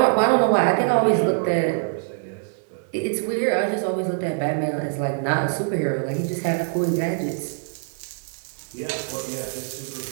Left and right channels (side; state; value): left; silent; digital silence